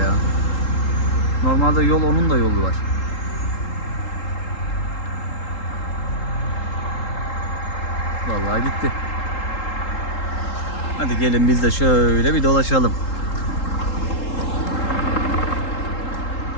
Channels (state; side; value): late; right; 3.8 ms